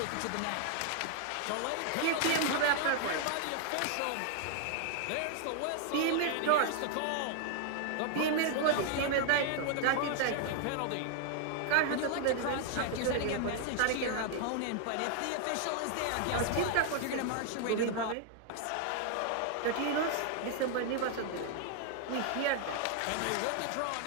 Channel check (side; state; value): both; different; correlation 0.00